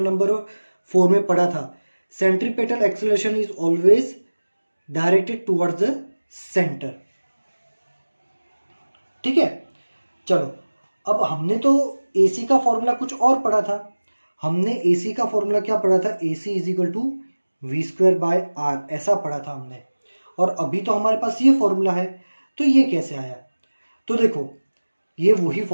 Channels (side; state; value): both; inverted; correlation -1.00